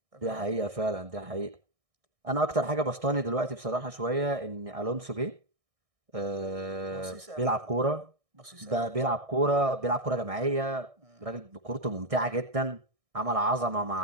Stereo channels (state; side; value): late; left; 1.6 ms